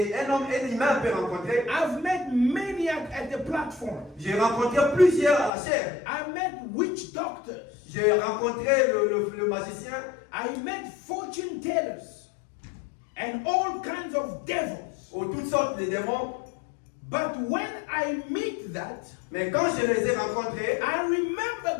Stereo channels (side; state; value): right; drops out; at 5.5 s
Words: qu'un homme, un humain peut rencontrer. I've met many at the platform. J'ai rencontré plusieurs à la chair. I met witch doctors. J'ai rencontré le magicien. I met fortune tellers and all kinds of devils. Ou toutes sortes de démons. But when I meet that, Mais quand je les ai rencontrés, I